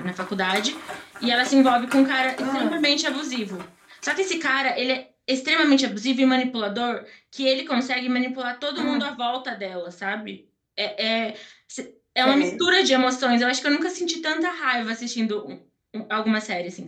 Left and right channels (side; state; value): both; identical; correlation 1.00